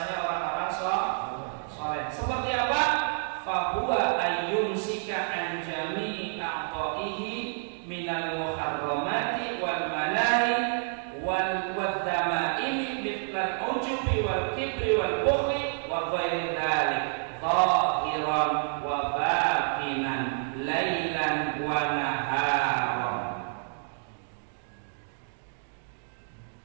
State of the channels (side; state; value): left; silent; digital silence